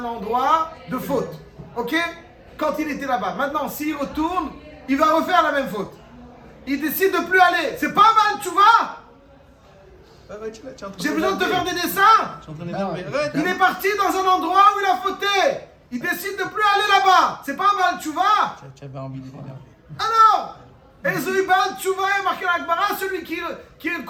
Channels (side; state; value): both; identical; correlation 1.00